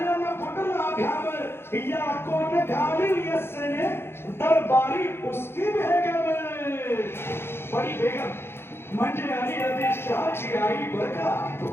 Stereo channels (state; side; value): late; right; 0.11 ms